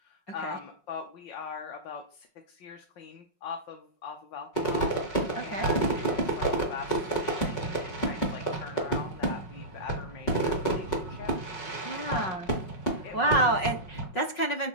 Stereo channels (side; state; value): right; late; 5.4 ms